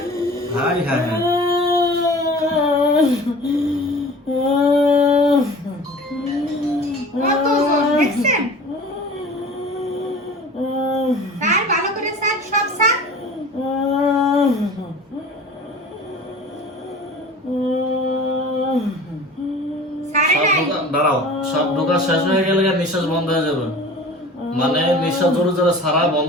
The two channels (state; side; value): normal; both; correlation 0.41